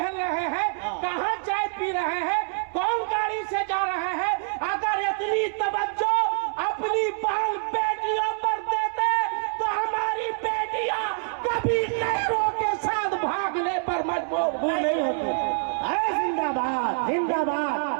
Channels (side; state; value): left; silent; 61 dB below the other